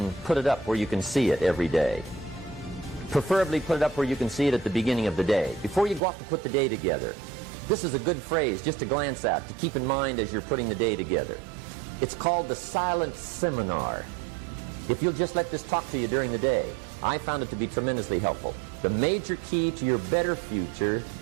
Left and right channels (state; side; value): drops out; left; at 6.0 s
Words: put it up where you can see it every day. Preferably put it up where you can see it at the beginning of the day, before you go off to put the day together. This is a good phrase just to glance at, to keep in mind as you're putting the day together. It's called the silent seminar. If you'll just let this talk to you during the day, I found it to be tremendously helpful. The major key to your better future